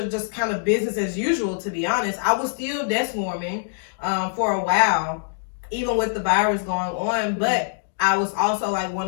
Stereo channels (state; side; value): silent; right; digital silence